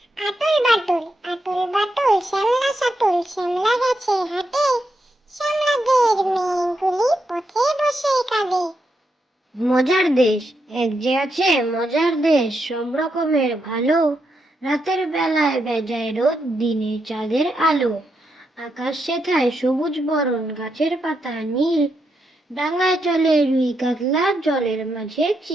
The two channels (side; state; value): both; normal; correlation 0.82